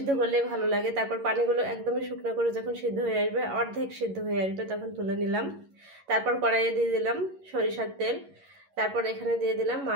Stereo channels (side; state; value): left; late; 11 ms